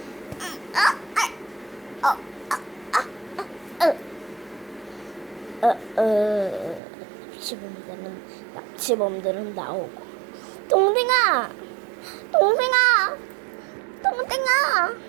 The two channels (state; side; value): drops out; left; at 6.8 s